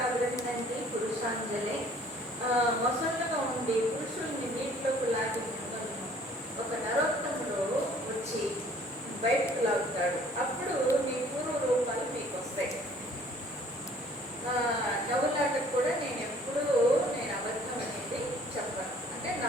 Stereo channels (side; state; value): both; normal; correlation 0.55